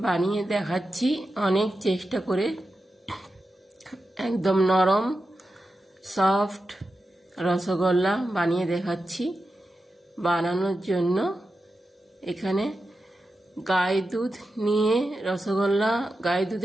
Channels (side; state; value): both; normal; correlation 0.91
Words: বানিয়ে দেখাচ্ছি। অনেক চেষ্টা করে একদম নরম সফট রসগোল্লা বানিয়ে দেখাচ্ছি। বানানোর জন্য এখানে গাই দুধ নিয়ে রসগোল্লা গাই